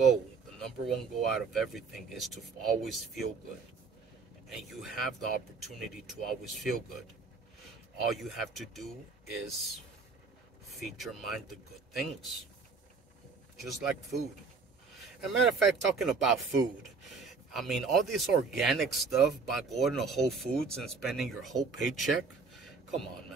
out of everything is to always feel good. And you have the opportunity to always feel good. All you have to do is feed your mind the good things. Just like food. As a matter of fact, talking about food, I mean, all this organic stuff by going to Whole Foods and spending your whole paycheck, come on,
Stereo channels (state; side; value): quieter; left; 4.6 dB